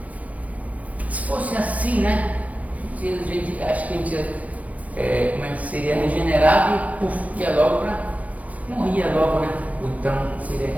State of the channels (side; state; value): left; late; 0.071 ms